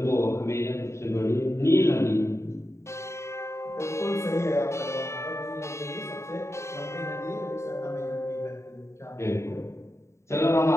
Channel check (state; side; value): late; right; 0.14 ms